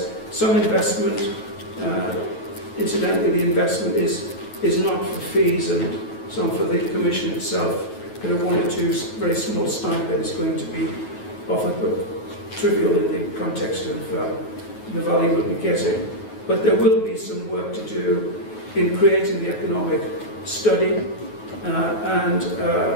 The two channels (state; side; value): late; right; 9.3 ms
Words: some investment. Incidentally, the investment is not for fees and some for the Commission itself, but a one or two very small stipend is going to be offered, but trivial in the context of the value we'll be getting. But there will be some work to do in creating the economic study, and